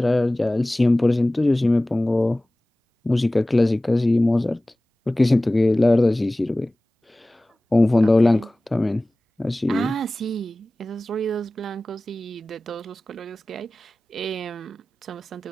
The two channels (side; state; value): both; normal; correlation 0.98